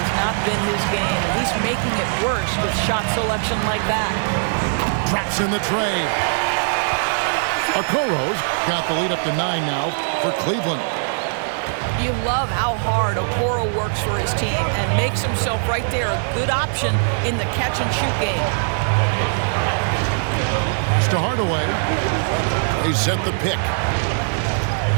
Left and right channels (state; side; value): silent; left; 65 dB below the other